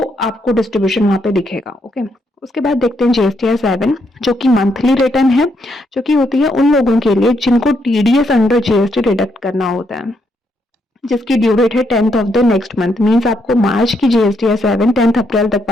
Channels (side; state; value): both; normal; correlation 0.77